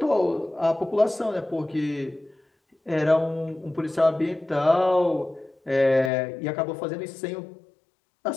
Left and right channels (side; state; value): right; drops out; at 6.1 s